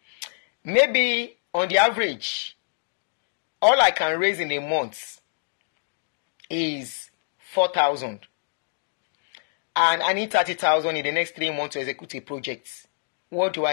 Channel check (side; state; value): right; silent; digital silence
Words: Maybe on the average, all I can raise in a month is 4,000. And I need 30,000 in the next 3 months to execute a project. What do?